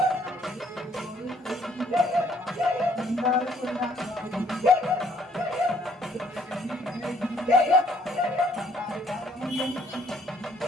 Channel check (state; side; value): normal; both; correlation 0.64